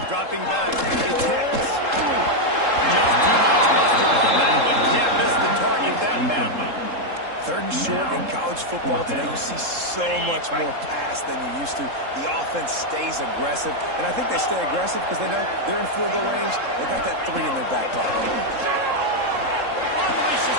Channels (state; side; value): late; left; 3.7 ms